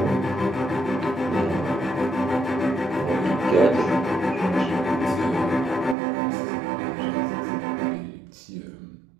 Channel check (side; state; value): left; drops out; at 6.0 s